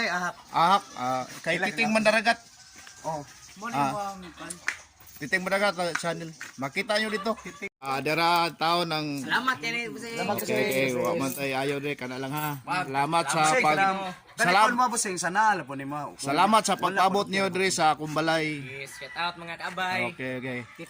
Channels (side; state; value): both; identical; correlation 1.00